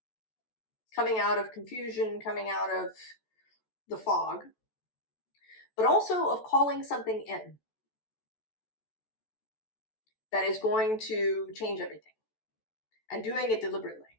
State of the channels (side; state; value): right; late; 14 ms